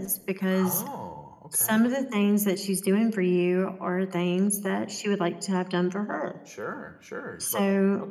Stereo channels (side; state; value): both; identical; correlation 1.00